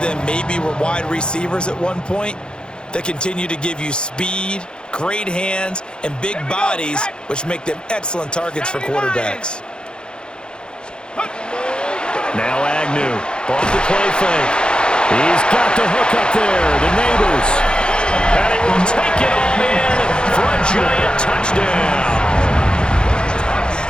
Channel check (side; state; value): right; late; 0.049 ms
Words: them maybe were wide receivers at one point that continue to give you speed, great hands, and big bodies, which make them excellent targets for quarterbacks. Now Agnew, off the play fake. He's got the hook up there, the Neighbors. And he will take it on in for a giant touchdown.